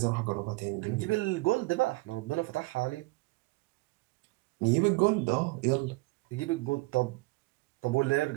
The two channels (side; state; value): left; quieter; 23.6 dB